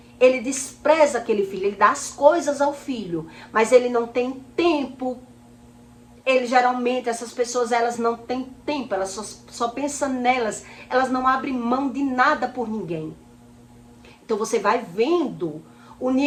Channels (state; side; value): identical; both; correlation 1.00